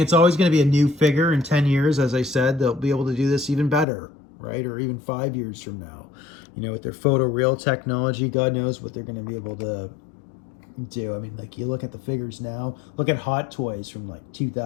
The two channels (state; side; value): drops out; right; at 3.9 s